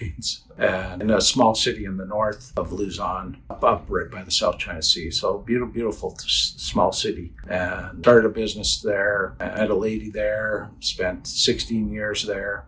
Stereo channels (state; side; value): identical; both; correlation 1.00